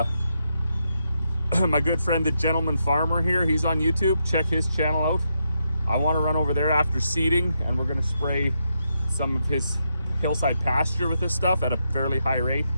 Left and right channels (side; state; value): both; inverted; correlation -0.82